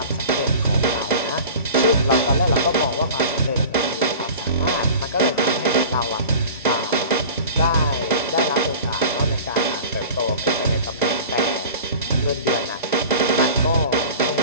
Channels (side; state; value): both; inverted; correlation -0.37